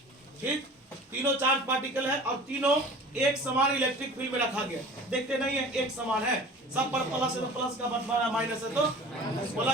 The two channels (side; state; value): both; normal; correlation 0.42